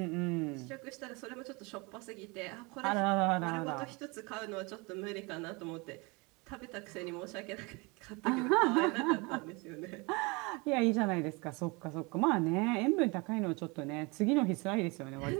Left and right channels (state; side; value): quieter; left; 27.6 dB